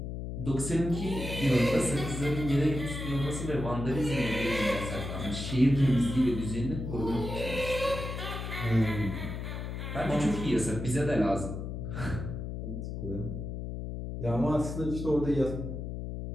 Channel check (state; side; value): noise; left; hum, 6 dB below the sound